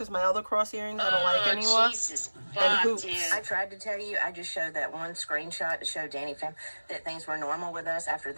my other cross earrings I don't like anymore. Jesus, And hoops. dude. I tried to tell you, I just showed that one screenshot to show Danny Fam that things were normal with us after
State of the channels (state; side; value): inverted; both; correlation -1.00